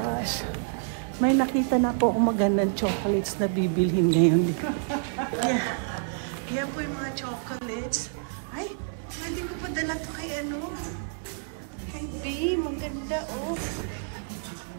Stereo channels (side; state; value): left; silent; 56 dB below the other